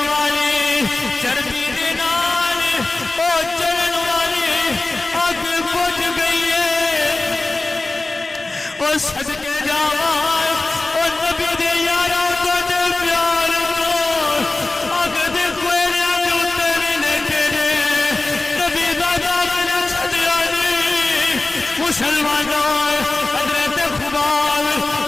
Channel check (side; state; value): right; quieter; 3.0 dB